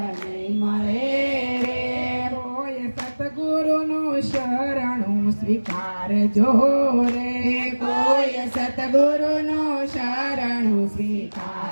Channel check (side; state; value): both; inverted; correlation -1.00